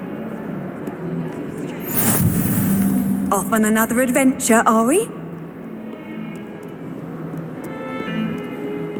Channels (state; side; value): identical; both; correlation 1.00